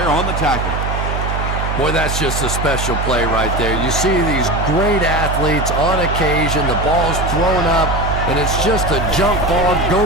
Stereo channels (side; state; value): right; noise; hum, 2 dB below the sound